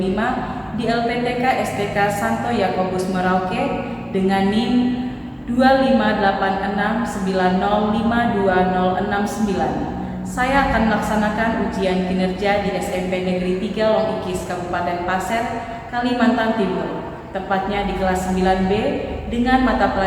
di LPTK STK Santo Yakobus Merauke dengan NIM 25869052069. Saya akan melaksanakan ujian kinerja di SMP Negeri 3 Longikis Kabupaten Pasir, Kalimantan Timur, tepatnya di kelas 9B dengan mata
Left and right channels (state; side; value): identical; both; correlation 1.00